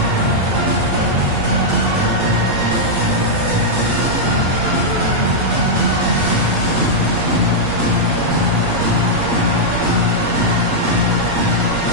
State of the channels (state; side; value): late; left; 8.4 ms